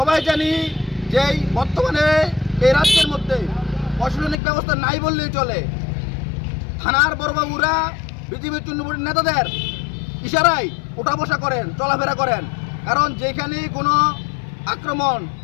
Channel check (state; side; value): drops out; right; at 4.4 s